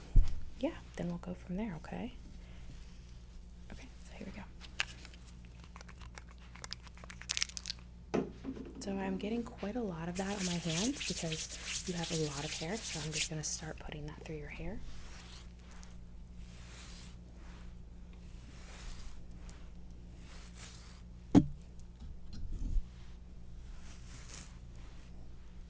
yeah, then we'll go from there, okay? Okay, so here we go. So I'm getting quite a lot of that on my hands because you have a lot of hair, so I'm just gonna start putting that through your hair.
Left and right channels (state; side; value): identical; both; correlation 1.00